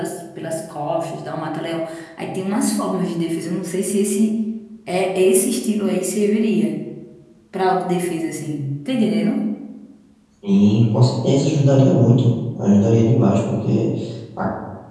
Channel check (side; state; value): both; identical; correlation 1.00